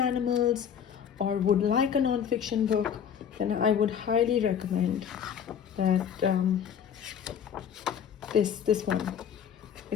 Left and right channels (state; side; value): quieter; right; 8.4 dB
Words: or would like a non-fiction book, then I would highly recommend that this one